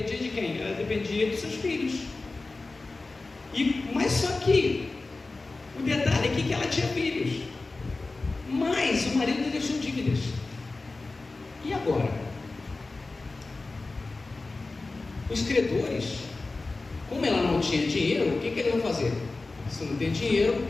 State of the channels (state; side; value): quieter; right; 3.5 dB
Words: de quem? Ela dependia dos seus filhos. Mas só que o detalhe aqui é que ela tinha filhos, mas o marido deixou dívidas. E agora? Os credores, como ela não tinha dinheiro, o que eles vão fazer? Se não tem dinheiro,